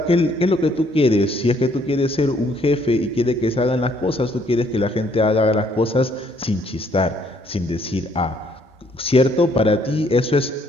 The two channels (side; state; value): both; normal; correlation 0.66